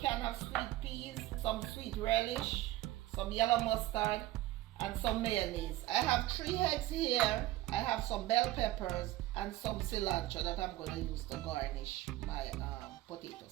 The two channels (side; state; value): left; quieter; 16.3 dB